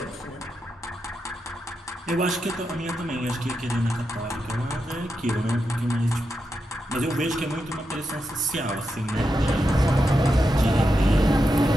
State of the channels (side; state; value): both; normal; correlation 0.87